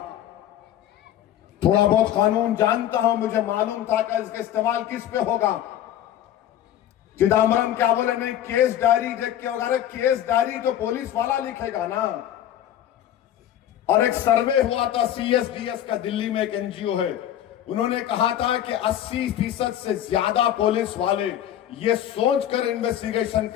थोड़ा बहुत कानून जानता हूं, मुझे मालूम था कि इसका इस्तेमाल किस पे होगा। चिदम्बरम क्या बोले, नहीं केस डायरी देख के होगा। अरे केस डायरी तो पुलिस वाला लिखेगा ना। और एक सर्वे हुआ था CSDS का, दिल्ली में एक NGO है, उन्होंने कहा था कि 80% से ज्यादा पुलिस वाले ये सोचकर इन्वेस्टिगेशन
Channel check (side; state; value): right; quieter; 11.3 dB